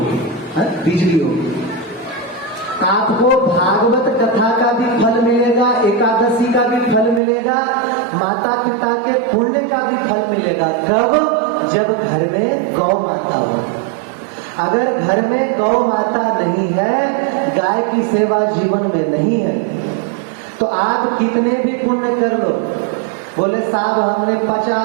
बिजली होगी। आपको भागवत कथा का भी फल मिलेगा, एकादशी का भी फल मिलेगा, माता पिता के पुण्य का भी फल मिलेगा। कब? जब घर में गौ माता होगी। अगर घर में गौ माता नहीं है, गाय की सेवा जीवन में नहीं है, तो आप कितने भी पुण्य कर लो। बोले साहब हमने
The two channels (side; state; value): left; drops out; at 7.2 s